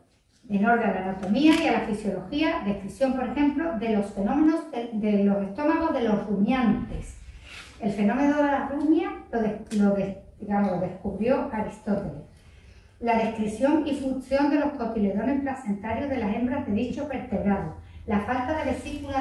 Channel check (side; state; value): both; identical; correlation 1.00